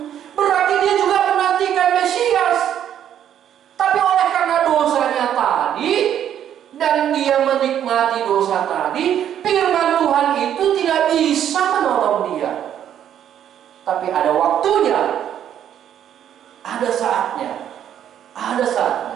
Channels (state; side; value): quieter; left; 10.0 dB